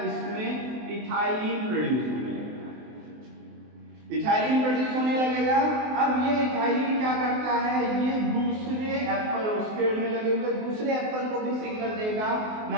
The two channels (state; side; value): late; left; 23 ms